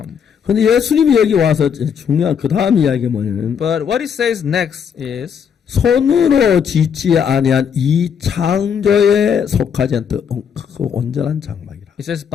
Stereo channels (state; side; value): quieter; right; 7.4 dB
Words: 그런데 예수님이 여기 와서 중요한 그 다음 이야기가 뭐냐면 But what it says next is, 손으로 짓지 아니한 이 창조에 속하지 않던 크고 온전한 장막이라. it says,